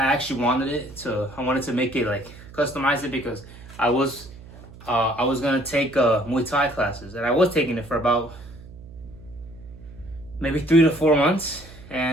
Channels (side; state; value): right; noise; hum, 18 dB below the sound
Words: actually wanted to make it like customize it because I was gonna take Muay Thai classes, and I was taking it for about maybe 3 to 4 months,